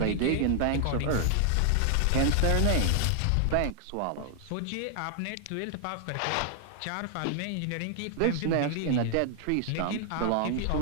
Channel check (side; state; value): both; different; correlation 0.00